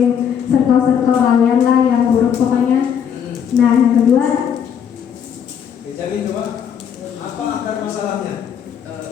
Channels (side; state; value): right; quieter; 8.1 dB